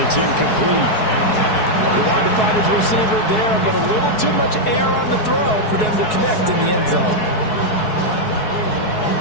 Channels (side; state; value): right; late; 4.7 ms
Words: it's incomplete. He wanted to find his receiver there, but a little too much air on the throw for them to connect in the end zone.